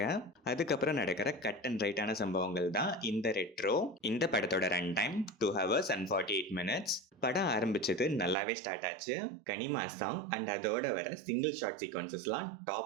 அதுக்கப்புறம் நடக்கிற கட் அண்ட் ரைட்டான சம்பவங்கள் தான் இந்த ரெட்ரோ. இந்த படத்தோட run time 2 hours and 48 minutes. படம் ஆரம்பிச்சது நல்லாவே ஸ்டார்ட் ஆச்சு. கனிமா சாங் அண்ட் அதோட வர சிங்கிள் ஷார்ட் சீக்வன்சஸ்லாம்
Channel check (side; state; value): left; drops out; at 8.3 s